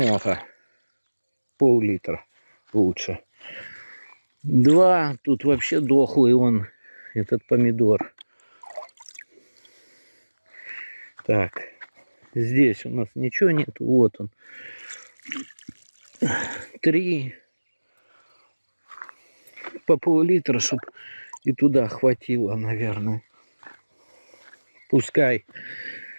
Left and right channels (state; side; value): inverted; both; correlation -1.00